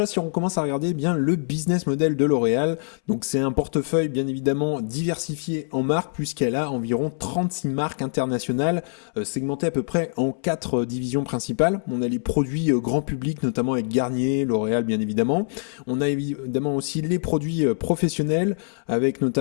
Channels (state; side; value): silent; right; 63 dB below the other